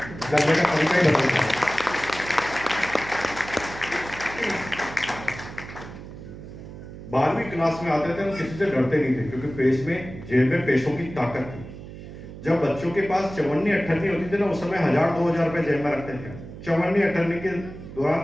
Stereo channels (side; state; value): right; noise; hum, 13 dB below the sound